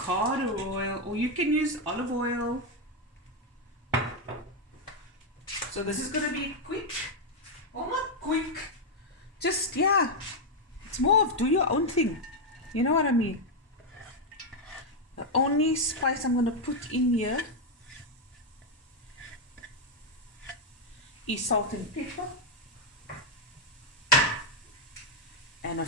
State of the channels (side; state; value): both; normal; correlation 0.02